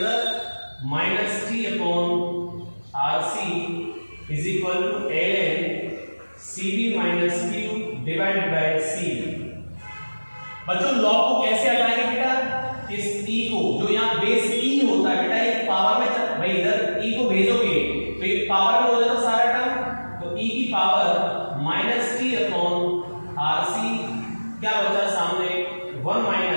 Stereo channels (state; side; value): inverted; both; correlation -1.00